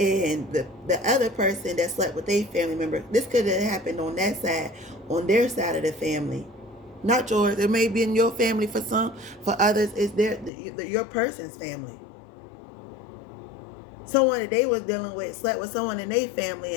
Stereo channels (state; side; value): drops out; right; at 10.5 s